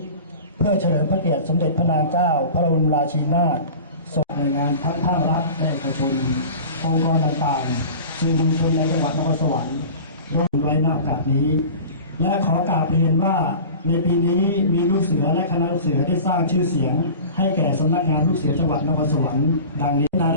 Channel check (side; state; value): both; inverted; correlation -0.37